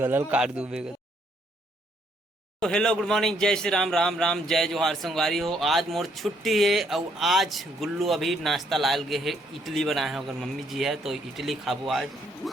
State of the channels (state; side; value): normal; both; correlation 0.70